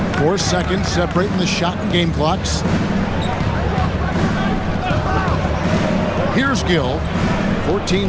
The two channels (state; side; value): identical; both; correlation 1.00